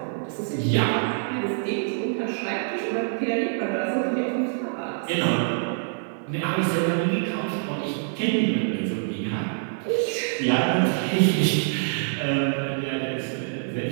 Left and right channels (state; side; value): silent; left; 61 dB below the other